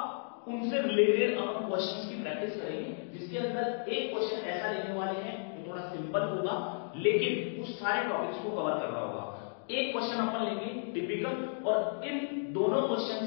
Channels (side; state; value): right; silent; digital silence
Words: उनसे रिलेटेड अपन क्वेश्चंस की प्रैक्टिस करेंगे, जिसके अंदर एक क्वेश्चन ऐसा लेने वाले हैं जो थोड़ा सिंपल होगा लेकिन उस सारे टॉपिक्स को कवर कर रहा होगा। एक क्वेश्चन अपन लेंगे टिपिकल, और इन दोनों